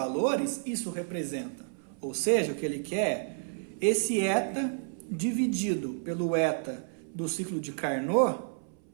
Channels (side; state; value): left; silent; 57 dB below the other